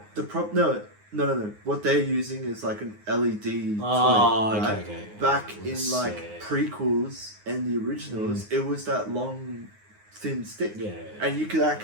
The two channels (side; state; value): left; late; 9.6 ms